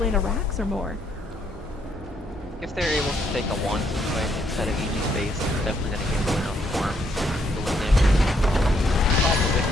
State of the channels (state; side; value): normal; both; correlation 0.72